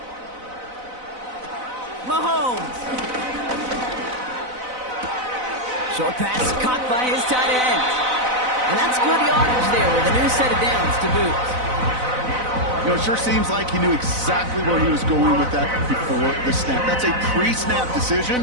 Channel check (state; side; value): late; left; 4.0 ms